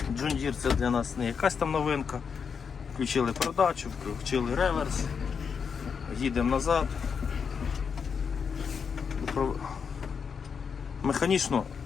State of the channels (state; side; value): quieter; right; 6.3 dB